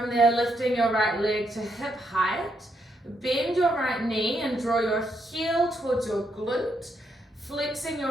there, lifting your right leg to hip height, bend your right knee and draw your heel towards your glute. Flexing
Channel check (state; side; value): normal; both; correlation 0.78